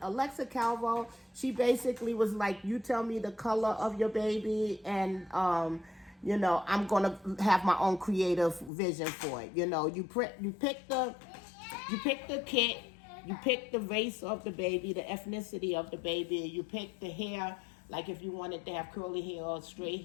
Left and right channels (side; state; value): right; drops out; at 8.7 s